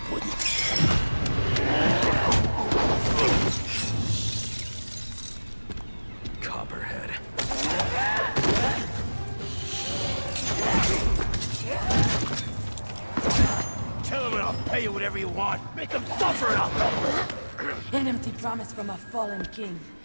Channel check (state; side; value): inverted; both; correlation -1.00